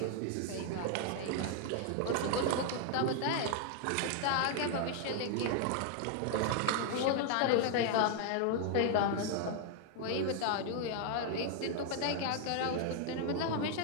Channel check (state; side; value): different; both; correlation 0.00